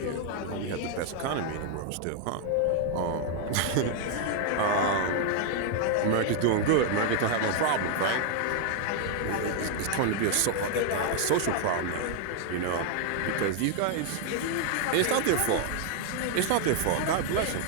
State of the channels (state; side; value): different; both; correlation 0.00